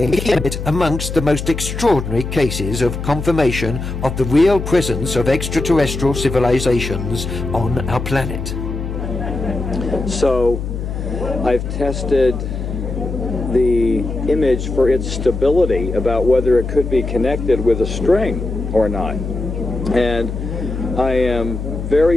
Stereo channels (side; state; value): left; noise; hum, 5 dB below the sound